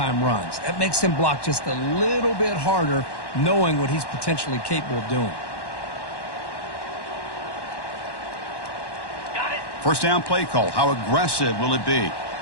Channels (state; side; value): late; right; 1.1 ms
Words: runs. That makes them block just a little bit harder, knowing what he's potentially capable of doing. First down play call. How aggressive will it be?